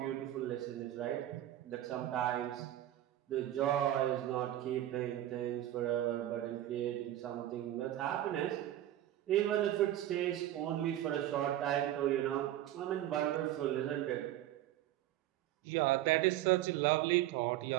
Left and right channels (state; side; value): quieter; left; 13.3 dB